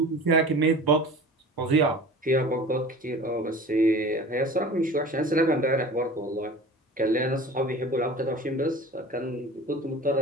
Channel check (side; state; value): both; normal; correlation 0.39